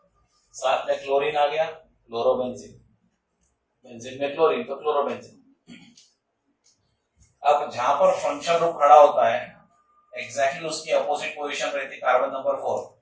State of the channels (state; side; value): identical; both; correlation 1.00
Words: साथ में क्लोरीन आ गया, क्लोरोबेंजीन, बेंजीन में क्लोरीन तो क्लोरोबेंजीन। अब जहां पर फंक्शन ग्रुप खड़ा होता है एग्जैक्टली उसकी अपोजिट पोजीशन रहती है कार्बन नंबर 4,